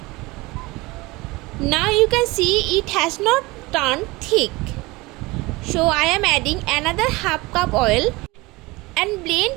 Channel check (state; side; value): quieter; left; 22.4 dB